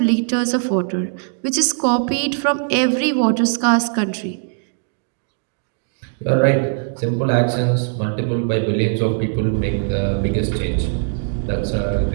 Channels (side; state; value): left; silent; digital silence